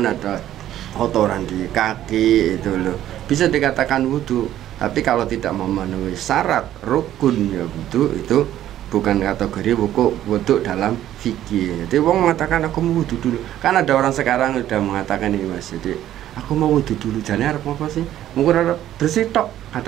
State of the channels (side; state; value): left; quieter; 12.4 dB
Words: atau kotoran di kaki itu loh, bisa dikatakan wudhu. Tapi kalau tidak memenuhi syarat rukun ya wudhu, itu bukan kategori wudhu dalam fikih. Jadi orang mengatakan aku mau wudhu dulu, kan ada orang sekarang udah mengatakan ini Mas, jadi aku mau wudhu dulu, jane arep apa sih? Mungkin arep bersih tok,